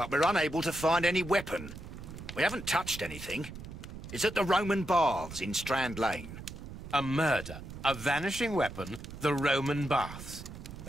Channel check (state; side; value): noise; right; rumble, 12 dB below the sound